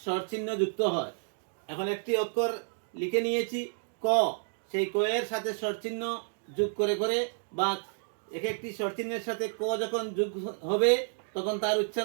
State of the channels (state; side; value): silent; left; digital silence